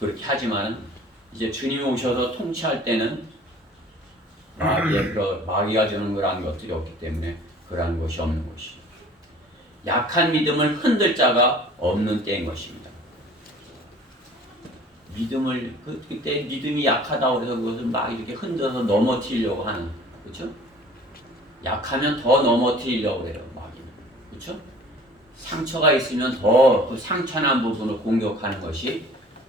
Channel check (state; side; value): normal; both; correlation 0.48